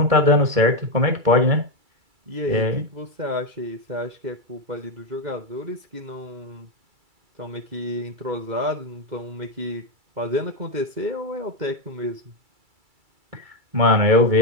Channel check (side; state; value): left; late; 2.3 ms